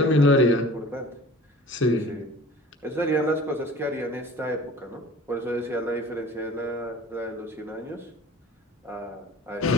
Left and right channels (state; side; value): normal; both; correlation 0.44